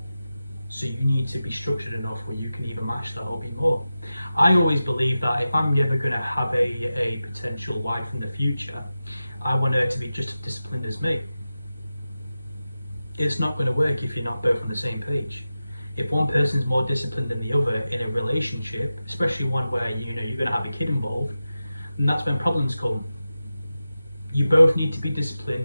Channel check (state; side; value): inverted; both; correlation -0.93